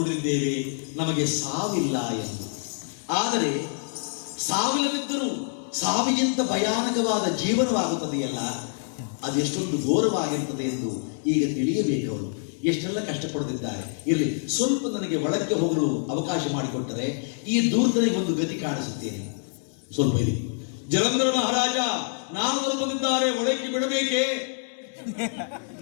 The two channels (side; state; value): right; silent; 61 dB below the other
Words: ನಮಗೆ ಸಾವಿಲ್ಲ ಎಂದು. ಆದರೆ ಸಾವಿಲ್ಲದಿದ್ದರೂ ಸಾವಿಗಿಂತ ಭಯಾನಕವಾದ ಜೀವನವಾಗುತ್ತದೆಯಲ್ಲ, ಅದೆಷ್ಟೊಂದು ಘೋರವಾಗಿರುತ್ತದೆ ಎಂದು ಈಗ ತಿಳಿಯಬೇಕು. ಅವರು ಎಷ್ಟೆಲ್ಲ ಕಷ್ಟಪಡುತ್ತಿದ್ದಾರೆ. ಇರಲಿ, ಸ್ವಲ್ಪ ನನಗೆ ಒಳಕ್ಕೆ ಹೋಗಲು ಅವಕಾಶ ಮಾಡಿಕೊಟ್ಟರೆ ಈ ದೂರ್ತನಿಗೆ ಒಂದು ಗತಿ ಕಾಣಿಸುತ್ತೇನೆ. ಸ್ವಲ್ಪ ಇರಿ. ಜಲಂಧರ ಮಹಾರಾಜ ನಾರದರು ಬಂದಿದ್ದಾರೆ, ಒಳಕ್ಕೆ ಬಿಡಬೇಕೇ?